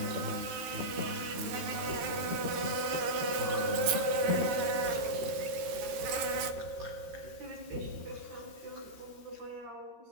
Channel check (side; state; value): left; late; 13 ms